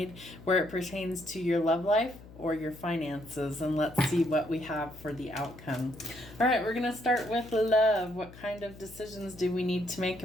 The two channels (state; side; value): noise; left; hum, 18 dB below the sound